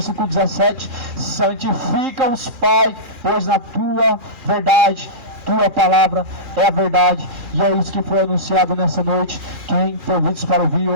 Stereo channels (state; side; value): late; left; 2.4 ms